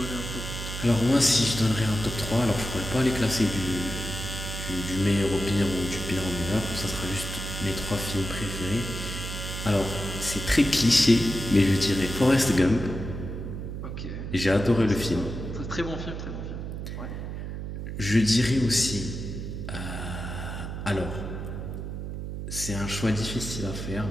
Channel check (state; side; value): noise; right; hum, 6 dB below the sound